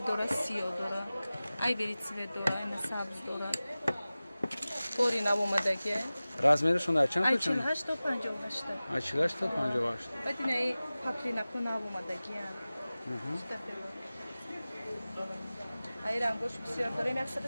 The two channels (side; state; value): both; inverted; correlation -0.97